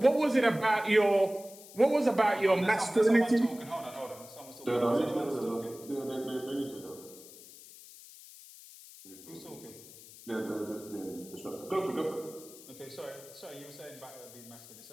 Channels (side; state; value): left; noise; hiss, 18 dB below the sound